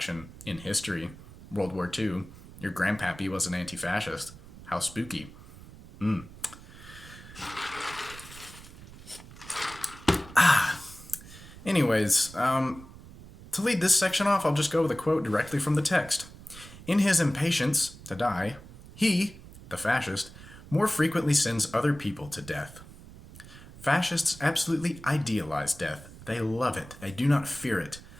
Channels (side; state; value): right; noise; rumble, 18 dB below the sound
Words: in history. World War II. Your grandpappy was an anti-fascist. How spooky. Anyways, to lead this section off, I'll just go with a quote directly from the text. In his impatience to die, he, the fascist, more frequently sends other people to death. Fascists absolutely idealize death. They love it. They do not fear it.